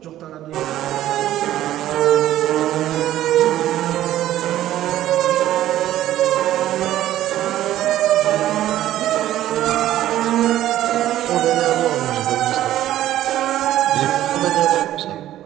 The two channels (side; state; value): left; quieter; 13.2 dB